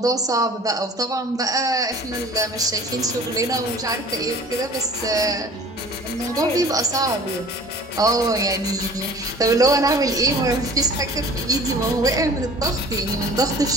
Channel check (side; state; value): both; normal; correlation 0.46